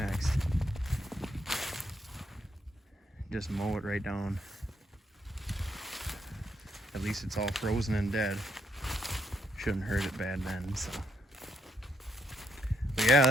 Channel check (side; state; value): both; normal; correlation 0.76